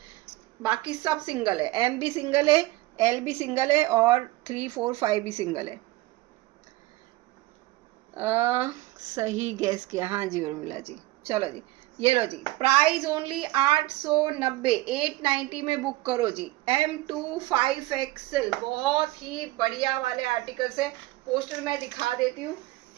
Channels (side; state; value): left; quieter; 18.8 dB